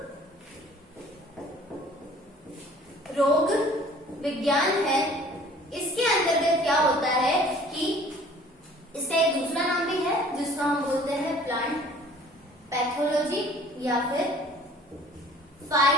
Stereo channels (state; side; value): normal; both; correlation 0.51